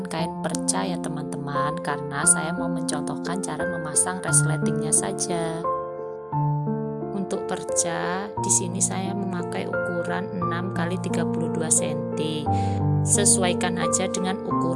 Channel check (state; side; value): identical; both; correlation 1.00